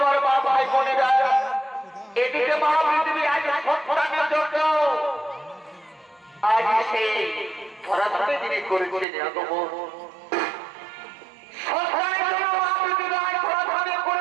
মা ভাই বোনেরা, এদিকে মা পৃথিবী আজ সন্তানের জন্য আজ সেই ধরাধামে যিনি করেছেন আগমন, সন্তানের জন্য মা পৃথিবী আজ ধরাধামে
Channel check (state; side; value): drops out; left; at 9.1 s